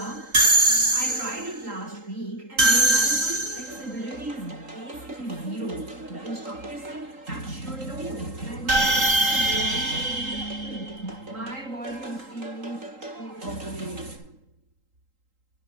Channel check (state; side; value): late; left; 3.8 ms